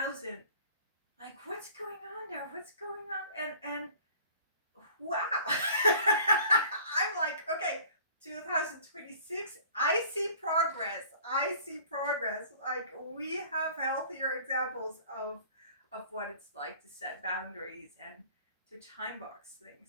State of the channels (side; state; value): both; inverted; correlation -0.49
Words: like what's going on there, what's going on, and wow. I'm like, okay, 2026, I see progress. I see progress. Like we have healthier examples of what it's like to set boundaries and to time box